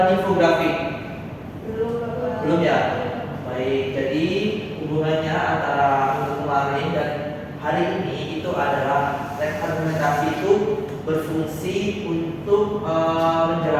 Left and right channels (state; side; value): identical; both; correlation 1.00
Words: infografi? Belum, Bapak. Belum ya? Baik, jadi hubungannya antara minggu kemarin dan hari ini itu adalah teks argumentasi itu berfungsi untuk